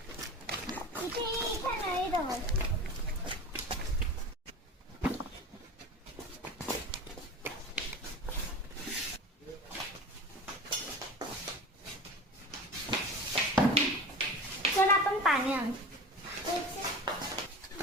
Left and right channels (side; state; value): both; normal; correlation 0.33